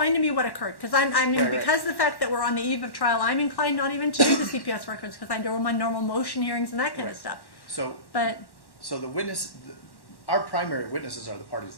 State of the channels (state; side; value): late; right; 1.1 ms